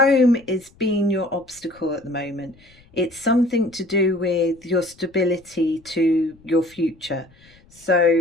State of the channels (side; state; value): left; noise; rumble, 28 dB below the sound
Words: is being your obstacle at the moment. It's something to do with your stability to your future.